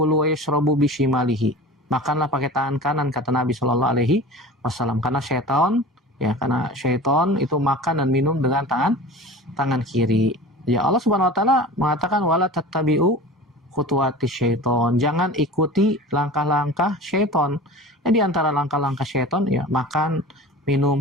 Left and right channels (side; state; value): both; normal; correlation 0.37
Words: wa yashrabu bishimalihi. Makanlah pakai tangan kanan, kata Nabi sallallahu alaihi wasallam. Karena syaitan itu makan dan minum dengan tangan kiri. Ya, Allah Subhanahu wa taala mengatakan wala tattabi'u khutuwati syaiton, jangan ikuti langkah-langkah syaiton. Ya, di antara langkah-langkah syaiton, ya, makan,